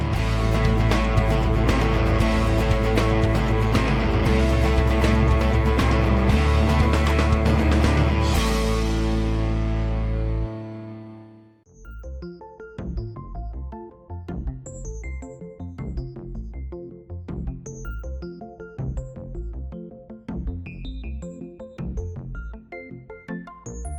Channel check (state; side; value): identical; both; correlation 1.00